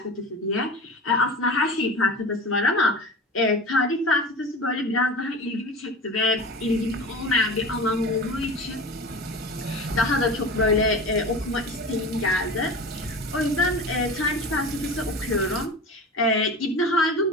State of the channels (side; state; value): both; normal; correlation 0.32